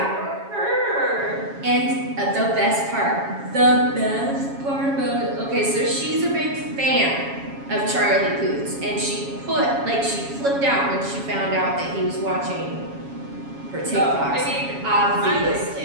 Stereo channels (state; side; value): late; left; 7.2 ms